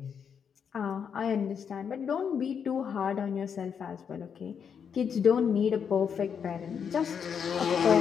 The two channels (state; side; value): quieter; right; 7.2 dB